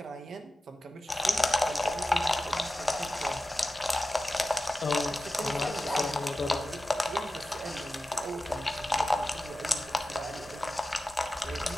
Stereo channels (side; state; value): both; normal; correlation 0.94